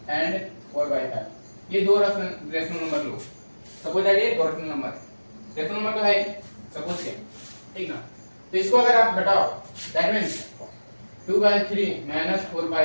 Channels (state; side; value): inverted; both; correlation -1.00